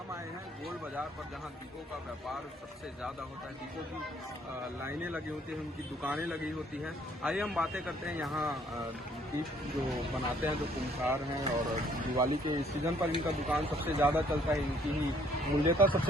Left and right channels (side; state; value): both; normal; correlation 0.63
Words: आए हैं गोल बाजार पर, जहां दीपों का व्यापार सबसे ज्यादा होता है। दीपों की लाइनें लगी होती हैं, उनकी दुकानें लगी होती हैं। आइए हम बातें करते हैं यहाँ दीप जो बनाते हैं, जो कुम्हार हैं, और दिवाली के सीजन पर इनका दुकान सबसे ज्यादा चलता है, इनकी ही मूल्यता